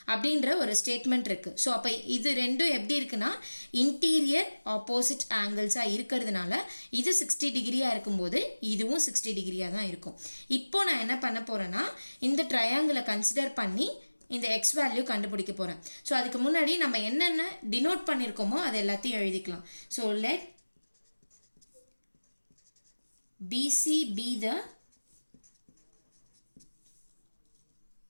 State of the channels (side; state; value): both; inverted; correlation -1.00